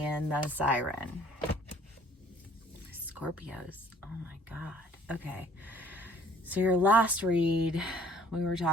the siren. Scorpios, oh my god. Okay, so your last read, we were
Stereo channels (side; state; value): both; normal; correlation 0.57